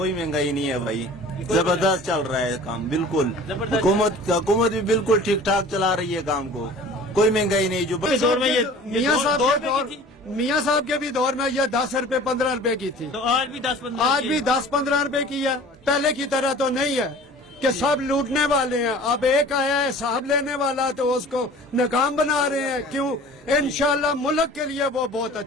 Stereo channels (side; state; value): both; normal; correlation 0.44